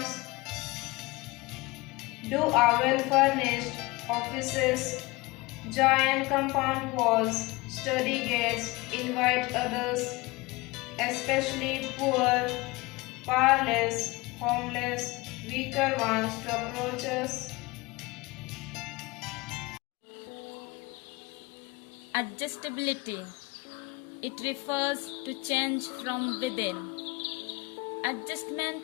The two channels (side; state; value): right; quieter; 23.0 dB